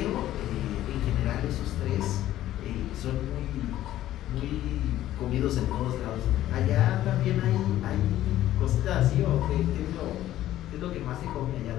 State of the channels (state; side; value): quieter; right; 13.5 dB